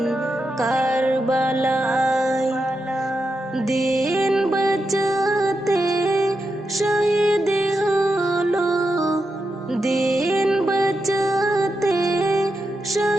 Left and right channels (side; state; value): both; normal; correlation 0.86